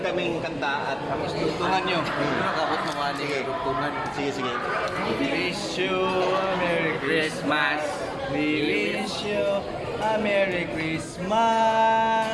kanta at Dugtungan nyo. Nakabot mo nga ni Dugtungan. sige. Wish you a Merry Christmas. We wish you a Merry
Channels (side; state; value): both; identical; correlation 1.00